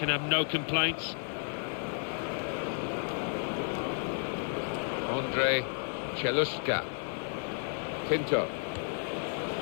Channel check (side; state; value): right; silent; 56 dB below the other